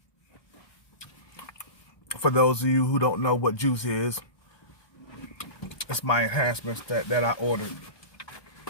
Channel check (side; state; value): right; late; 1.2 ms